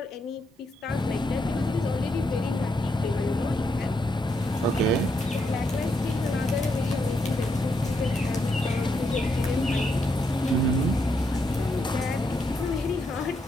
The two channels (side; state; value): both; normal; correlation 0.79